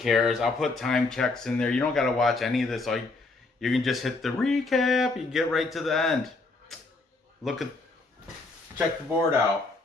I'll put time checks in there. You don't got to watch any of this. You can just hit the recap. You get right to the end. Check the board out.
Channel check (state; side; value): quieter; right; 3.5 dB